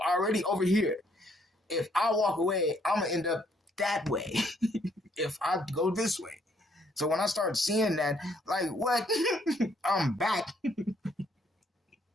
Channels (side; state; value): both; normal; correlation 0.68